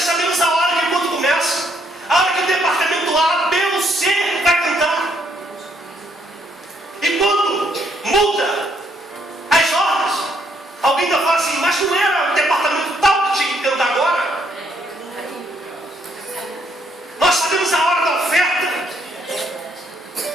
sabemos a hora que quando começa, a hora que o departamento A, B ou C vai cantar. E quando muda as ordens, alguém ainda fala assim, mas não era o departamento tal que tinha que cantar agora? Nós sabemos a hora da oferta.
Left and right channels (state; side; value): normal; both; correlation 0.71